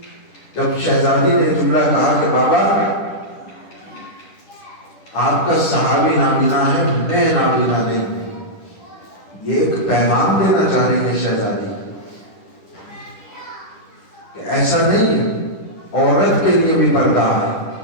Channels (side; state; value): right; late; 10 ms